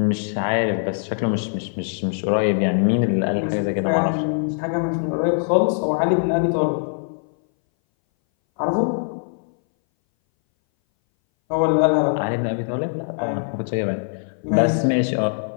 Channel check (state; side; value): silent; right; 61 dB below the other